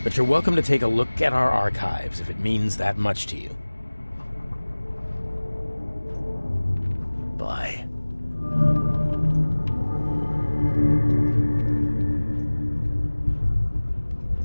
but you're welcome to take a look at our archives if it means that much to you. Bye.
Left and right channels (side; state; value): both; inverted; correlation -1.00